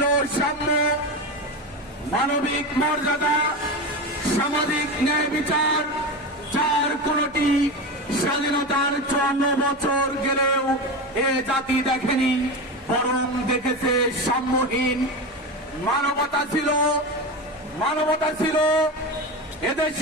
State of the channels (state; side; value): normal; both; correlation 0.21